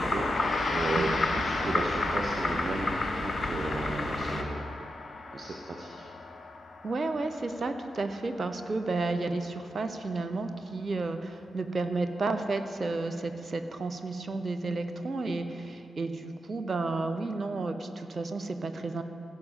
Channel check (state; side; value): normal; both; correlation 0.87